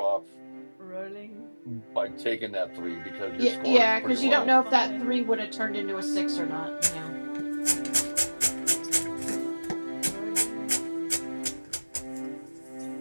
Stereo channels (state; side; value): inverted; both; correlation -1.00